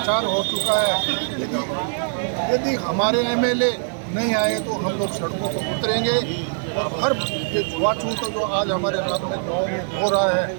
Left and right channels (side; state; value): left; silent; digital silence